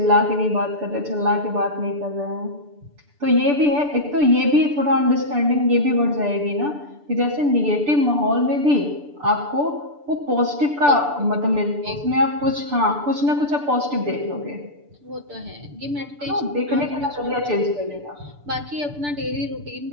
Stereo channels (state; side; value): late; left; 6.9 ms